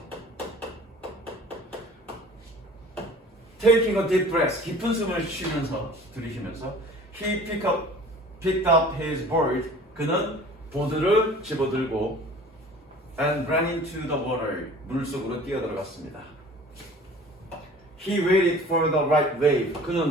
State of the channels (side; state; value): both; normal; correlation 0.46